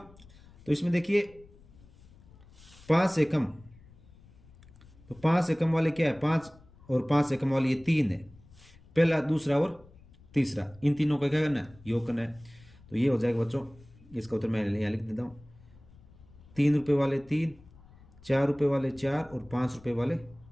तो इसमें देखिए 5 से कम, तो 5 से कम वाले क्या है, 5 और 5 से कम वाले ये 3 है, पहला दूसरा और तीसरा, इन तीनों का क्या करना है, योग करना है। तो ये हो जाएगा बच्चों, इसका उत्तर मैं यहाँ लिख देता हूँ, 3 रुपये वाले 3, 4 रुपये वाले 4 और 5 रुपये वाले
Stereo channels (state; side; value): noise; left; rumble, 24 dB below the sound